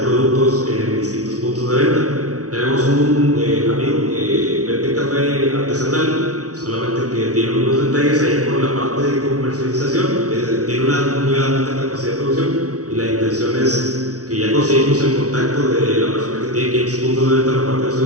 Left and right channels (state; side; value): late; left; 0.67 ms